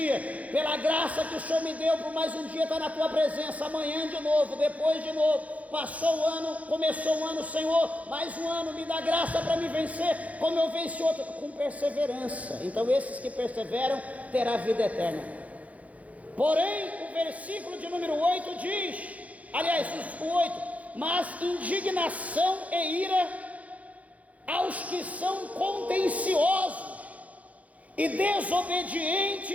pela graça que o Senhor me deu, por mais um dia estar na tua presença. Amanhã de novo, depois de novo. Passou o ano, começou o ano, Senhor, mais um ano, me dá graça para me vencer, como eu venci outro, com perseverança. Então esses que perseveram, terá vida eterna. Porém, o versículo de número 8 diz, aliás, o 8, mas indignação e ira aos que são contenciosos e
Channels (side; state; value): left; late; 0.069 ms